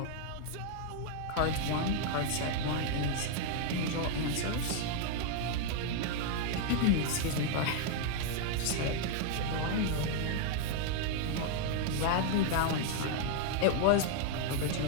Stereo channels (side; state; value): both; different; correlation 0.00